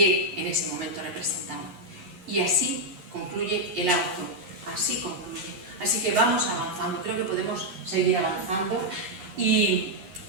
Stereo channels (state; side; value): late; left; 11 ms